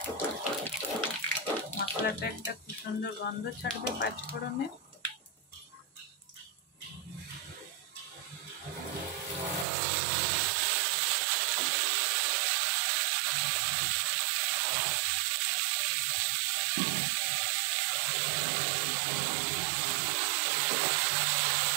মশলাটা একটা খুব সুন্দর গন্ধ ছাড়বে পাঁচ ফোড়নে।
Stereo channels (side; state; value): left; drops out; at 9.7 s